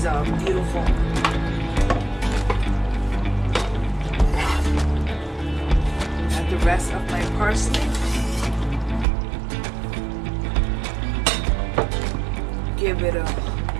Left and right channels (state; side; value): drops out; left; at 9.1 s